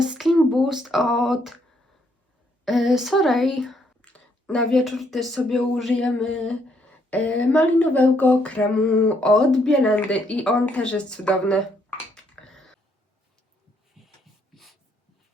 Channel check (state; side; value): normal; both; correlation 0.71